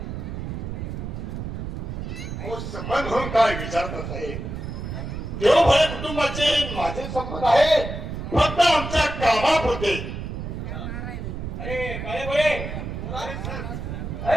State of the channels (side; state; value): right; noise; rumble, 6 dB below the sound